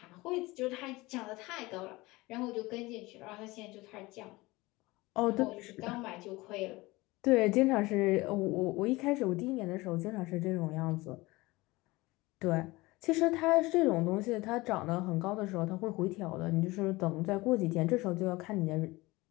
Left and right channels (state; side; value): quieter; right; 21.3 dB